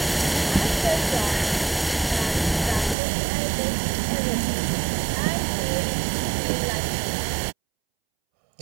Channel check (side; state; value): left; drops out; at 3.0 s